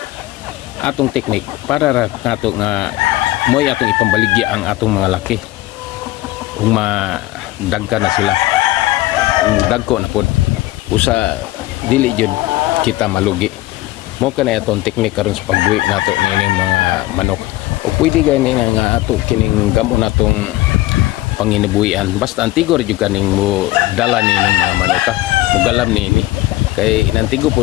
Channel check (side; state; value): right; quieter; 17.4 dB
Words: atong technique para nato nga moy atong ipambaligya ang atong mga laki kung madagka na sila dagko na pod usa dili jud kita malugi mo kanay atong technique karon sa pagbuhi nato nining mga manok o pwede gani nga ato kining gamon natong panginabuhian basta antigor jud kaning mo dala nining mga manok mugalam nini kay inantigo